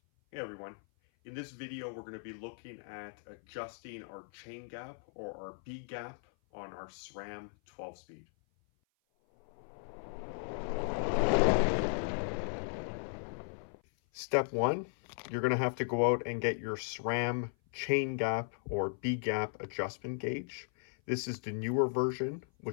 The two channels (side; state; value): right; silent; 53 dB below the other